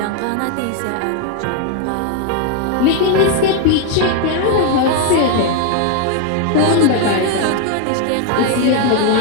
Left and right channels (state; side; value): different; both; correlation 0.01